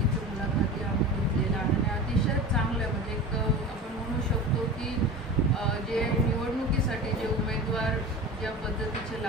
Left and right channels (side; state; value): both; normal; correlation 0.31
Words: इथे मुलाखती आम्ही घेतलेल्या आहे आणि अतिशय चांगलं म्हणजे एक आपण म्हणू शकतो की जे निवडणुकीसाठी जे उमेदवार ज्या पद्धतीचे